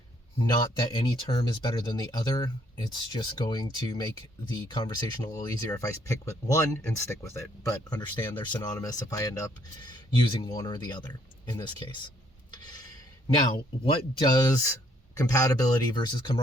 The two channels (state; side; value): normal; both; correlation 0.67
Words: Not that any term is better than the other. It's just going to make the conversation a little easier if I pick with one and stick with it. But understand they're synonymous if I end up using one or the other in this case. Now, what does compatibility versus